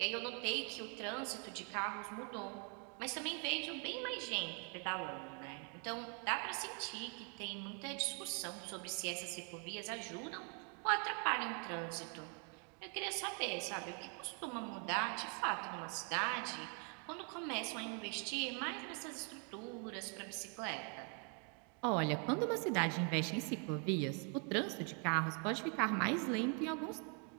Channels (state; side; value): quieter; left; 39.1 dB